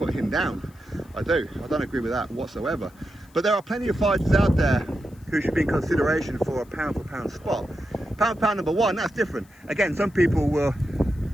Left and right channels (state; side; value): noise; left; hiss, 30 dB below the sound